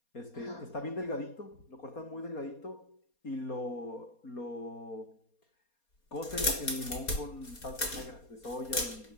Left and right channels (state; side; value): late; right; 4.2 ms